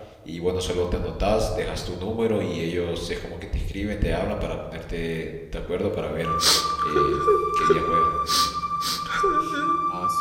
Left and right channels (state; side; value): identical; both; correlation 1.00